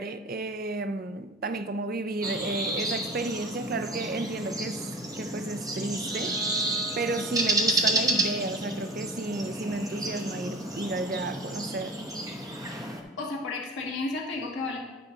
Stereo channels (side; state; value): both; normal; correlation 0.39